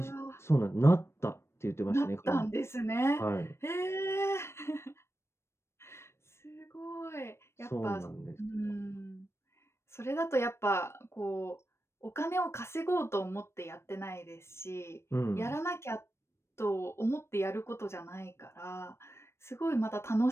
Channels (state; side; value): late; right; 0.13 ms